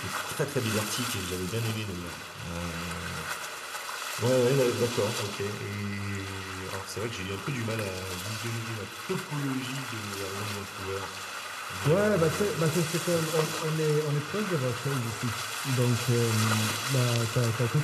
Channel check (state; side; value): identical; both; correlation 1.00